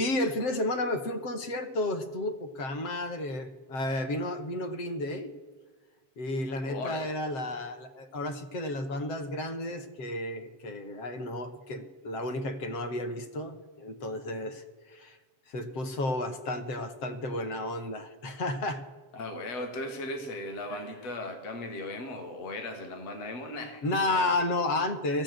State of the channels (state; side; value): late; right; 7.7 ms